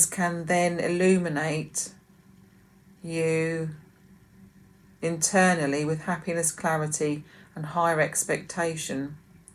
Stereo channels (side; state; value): both; identical; correlation 1.00